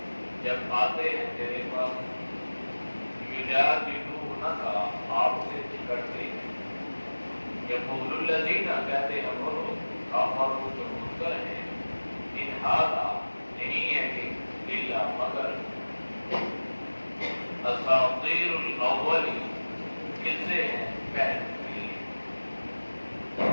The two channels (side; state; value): both; inverted; correlation -1.00